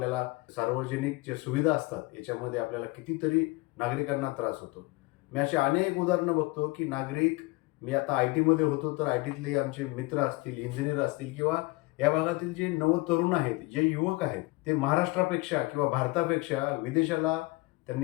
सार्वजनिक ज्या सुविधा असतात याच्यामध्ये आपल्याला कितीतरी नागरिकांना त्रास होतो. मी अशी अनेक उदाहरणं बघतो की नागरिक, मी आता IT मध्ये होतो तर ITतले आमचे मित्र असतील, इंजिनियर असतील किंवा या भागातील जे नवतरुण आहेत, जे युवक आहेत, ते महाराष्ट्रापेक्षा किंवा भारतापेक्षा विदेशाला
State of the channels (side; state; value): right; quieter; 23.2 dB